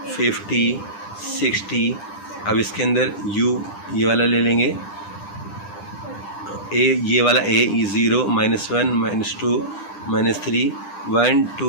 50 60। अब इसके अंदर u ये वाला ले लेंगे, ये वाला a 0 -1 -2 -3 1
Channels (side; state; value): right; late; 9.9 ms